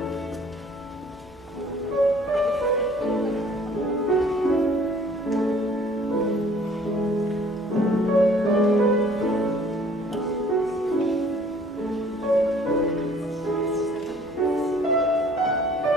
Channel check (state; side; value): normal; both; correlation 0.56